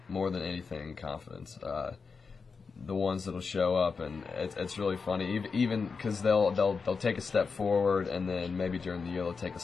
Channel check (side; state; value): right; quieter; 5.0 dB